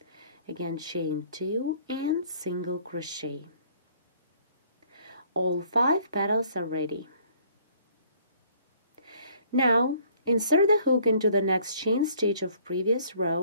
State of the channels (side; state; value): both; inverted; correlation -0.59